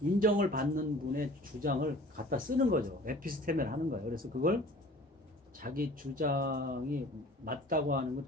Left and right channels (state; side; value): normal; both; correlation 0.47